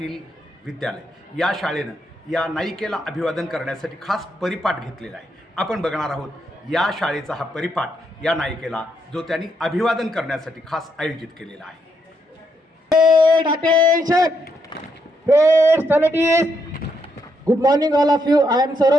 विद्यालय, या शाळेनं या नायिकेला अभिवादन करण्यासाठी खास परिपाठ घेतलेला आहे. आपण बघणार आहोत या शाळेचा हा परिपाठ या नायिकेला, जो त्यांनी अभिवादन करण्यासाठी खास आयोजित केलेला आहे. Attention! Great salutees! Good morning all of you. I am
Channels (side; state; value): both; normal; correlation 0.77